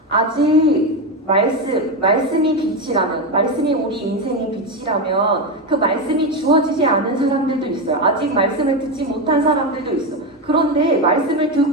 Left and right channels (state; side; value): normal; both; correlation 0.12